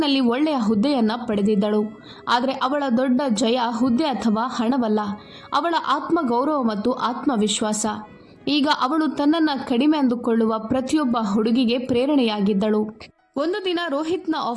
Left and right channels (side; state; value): both; identical; correlation 1.00